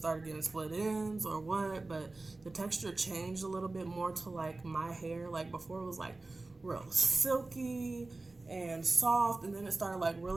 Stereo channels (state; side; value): quieter; left; 3.2 dB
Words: getting split ends or what, but the texture changed a little bit more to like my hair. Like before it was like real silky and soft, and then it started like